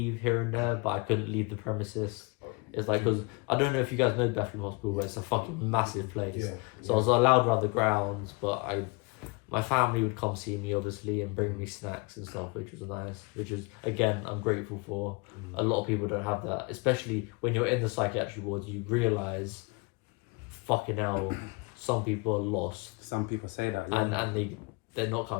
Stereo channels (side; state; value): right; quieter; 29.4 dB